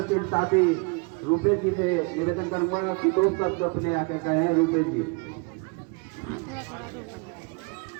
साथी रूपेश जी से निवेदन करूंगा कि 2 शब्द अपने आके कहें। रूपेश जी,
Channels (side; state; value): left; quieter; 31.7 dB